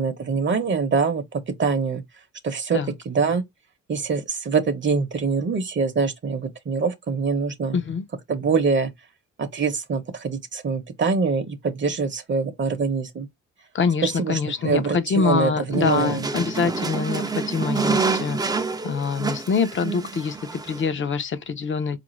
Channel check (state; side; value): normal; both; correlation 0.25